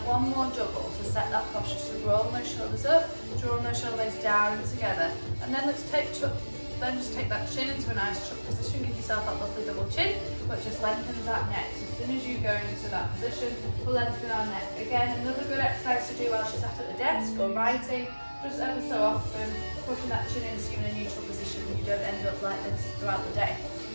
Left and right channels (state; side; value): inverted; both; correlation -1.00